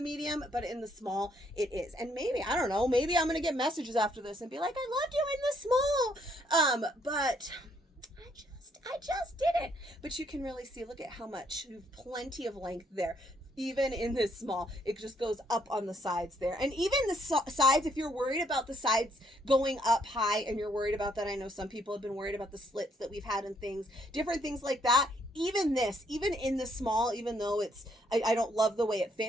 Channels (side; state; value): both; normal; correlation 0.70